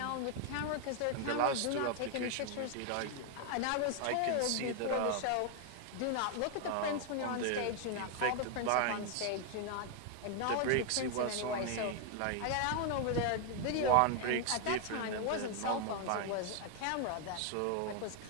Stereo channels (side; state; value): both; different; correlation 0.00